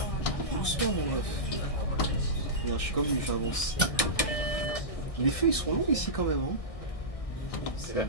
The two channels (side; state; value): right; late; 1.6 ms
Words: Doucement, mon meuf. Regarde, je suis comme lui, j'avance. Les feux, ils sont longs ici quand même. Hein. C'est vrai.